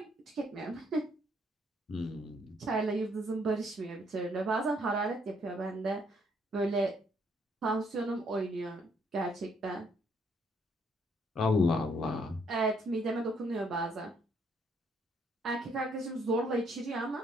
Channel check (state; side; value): normal; both; correlation 0.69